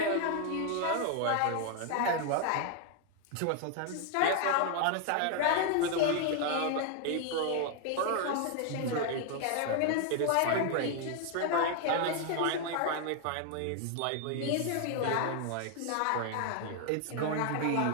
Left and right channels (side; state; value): both; different; correlation 0.00